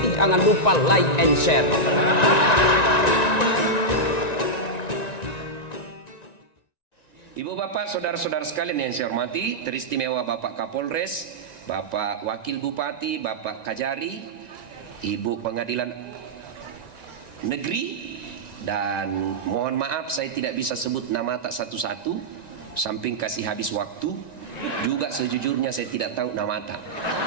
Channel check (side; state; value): right; late; 1.9 ms